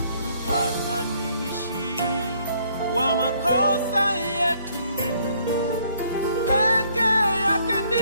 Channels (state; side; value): inverted; both; correlation -0.66